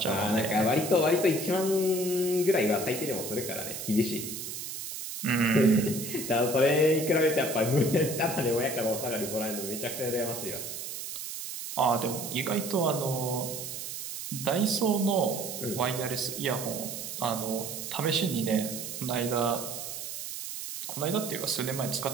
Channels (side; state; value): right; noise; hiss, 7 dB below the sound